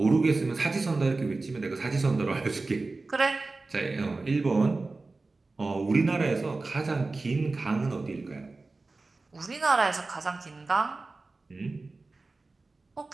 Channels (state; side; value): quieter; left; 3.5 dB